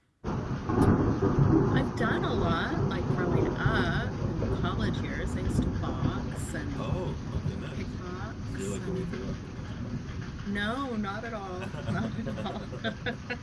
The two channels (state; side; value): identical; both; correlation 1.00